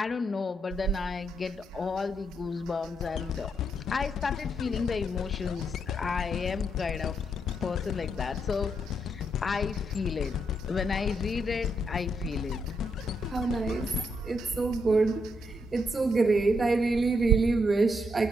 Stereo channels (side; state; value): both; normal; correlation 0.78